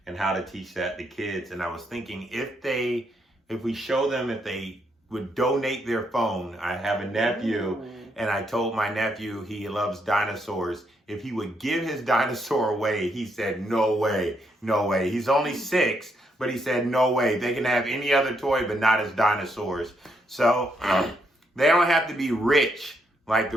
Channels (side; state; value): both; normal; correlation 0.76